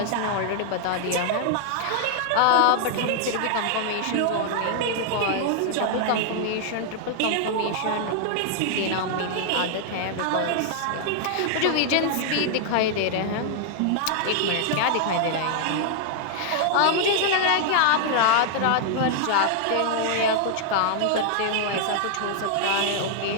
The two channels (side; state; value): both; different; correlation 0.00